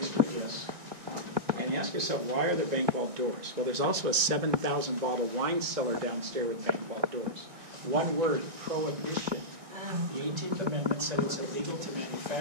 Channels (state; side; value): late; left; 2.0 ms